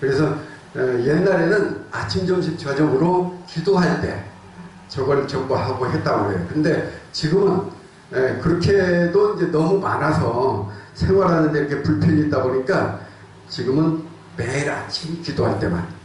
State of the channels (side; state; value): both; identical; correlation 1.00